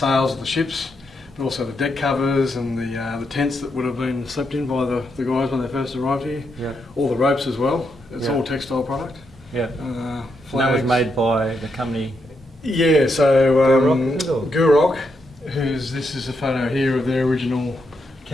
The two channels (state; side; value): normal; both; correlation 0.81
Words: of the ships, but also the deck covers and the tents that would have been slept in by the guys when they first arrived here. Yeah. All the ropes as well. It's Yeah. all textile product. Yeah. Flags. And that was made by the company. Yeah, so Gurok, is it, or? Gurok, this is a photo here of their original